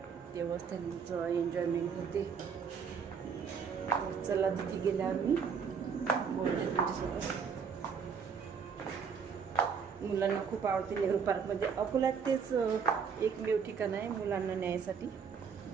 तेव्हाच त्यांचं एन्जॉयमेंट होते. चला तिथे गेल्या आम्ही मुलांना खूप आवडते नेहरू पार्कमध्ये. अकोल्यात तेच एकमेव ठिकाण आहे मुलांना न्यायसाठी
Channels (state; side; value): quieter; left; 6.3 dB